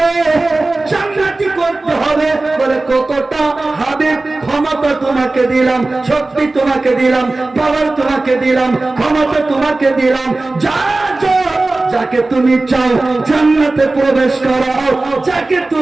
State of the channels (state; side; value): quieter; left; 3.1 dB